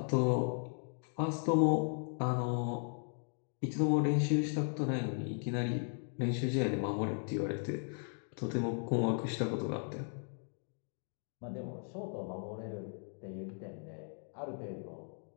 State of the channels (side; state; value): right; silent; 53 dB below the other